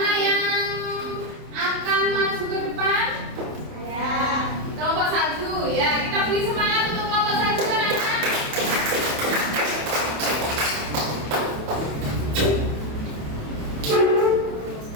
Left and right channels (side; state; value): left; late; 27 ms